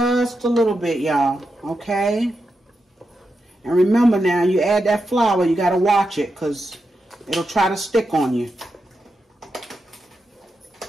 a little bit, y'all. Okay. And remember now, you add that flour, you got to watch it because it'll try to stick on you.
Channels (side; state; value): both; normal; correlation 0.87